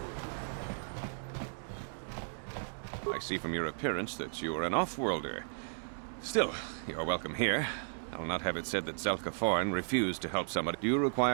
I see from your appearance that you are an off-worlder. Still, you're welcome here. I'll not have it said that Zelka Foreign refused to help somebody. Do you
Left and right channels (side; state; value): left; silent; digital silence